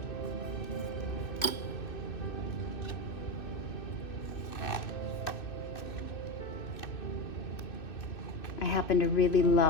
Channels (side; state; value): right; late; 2.6 ms